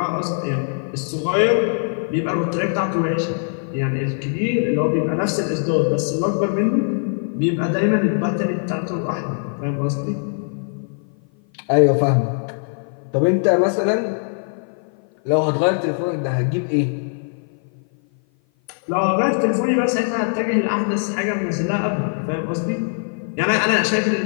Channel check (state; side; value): silent; right; 56 dB below the other